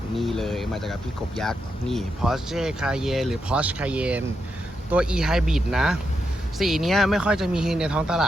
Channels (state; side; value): normal; both; correlation 0.84